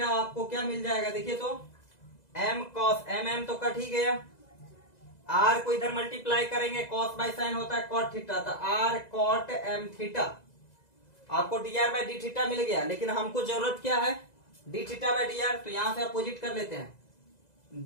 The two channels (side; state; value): right; late; 2.0 ms